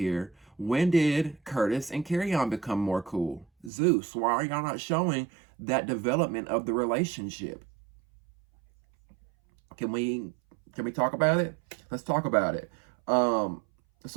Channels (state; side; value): drops out; left; at 3.7 s